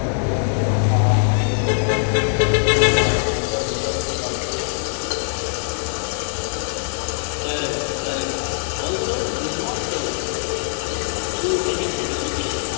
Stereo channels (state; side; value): silent; right; 55 dB below the other